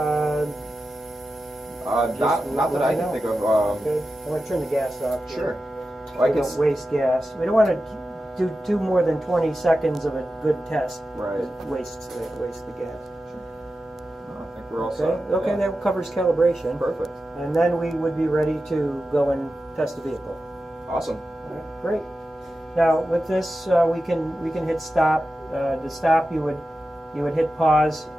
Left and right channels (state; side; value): normal; both; correlation 0.92